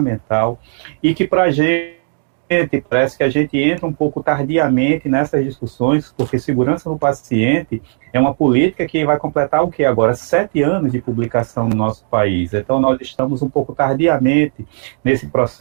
e que para a gente parece que a gente entra um pouco tardiamente nessas discussões, porque segurança do paciente é uma política que vai completar o que agora? 7 anos de publicação no nosso país. Então, nós estamos um pouco tardiamente nesse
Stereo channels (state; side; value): silent; left; digital silence